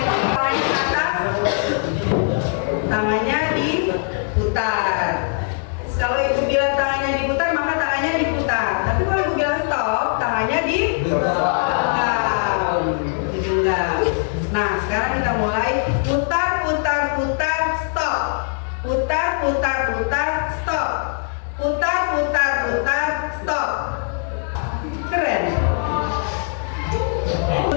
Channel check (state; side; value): silent; right; 58 dB below the other